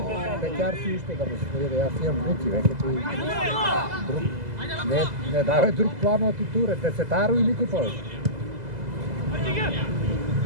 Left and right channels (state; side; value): late; left; 2.0 ms